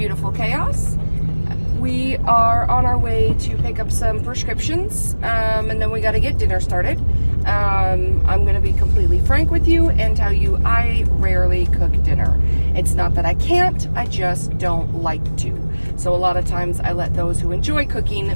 chaos. We are on our way to pick up some prescriptions, and then we got to get dinner started. I'm going to be completely frank with you and tell you I rarely cook dinner. It's not that I can't, I just don't like to. So a lot of times I let those who enjoy cooking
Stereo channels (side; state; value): both; inverted; correlation -1.00